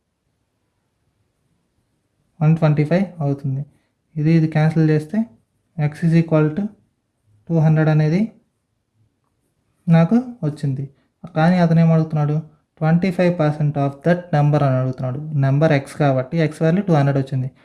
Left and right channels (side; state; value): both; identical; correlation 1.00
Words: 125 అవుతుంది. ఇది క్యాన్సిల్ చేస్తే x ఈజ్ ఈక్వల్ టు 200 అనేది నాకు వచ్చింది. కానీ అతను ఏమడుగుతున్నాడు, 25% ఆఫ్ దట్ నెంబర్ అని అడుగుతున్నాడు. నెంబర్ ఎక్స్ కాబట్టి ఎక్స్ వాల్యూ 200 వచ్చింది,